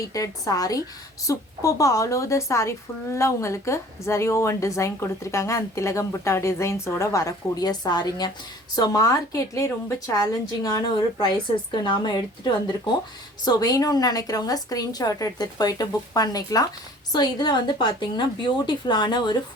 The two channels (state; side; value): normal; both; correlation 0.49